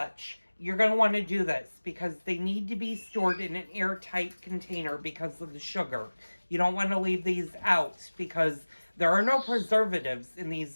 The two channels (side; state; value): both; inverted; correlation -1.00